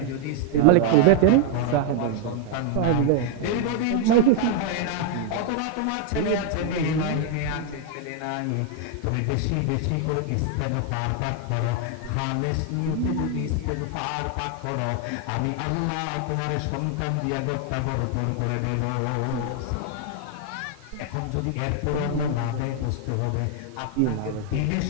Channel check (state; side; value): different; both; correlation 0.00